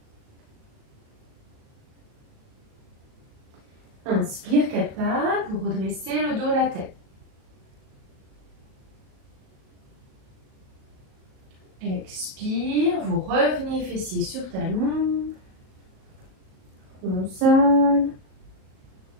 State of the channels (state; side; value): late; left; 37 ms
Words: Inspire, 4 pattes, vous redressez le dos, la tête. Expire, vous revenez fessier sur talon. Console.